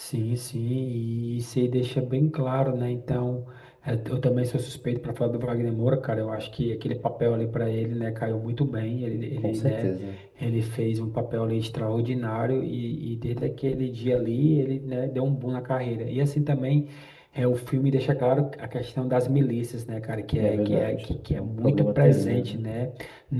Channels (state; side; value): identical; both; correlation 1.00